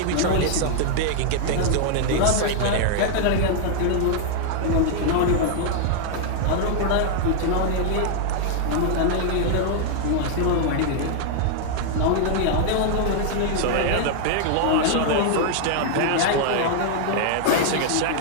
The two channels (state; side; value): different; both; correlation 0.00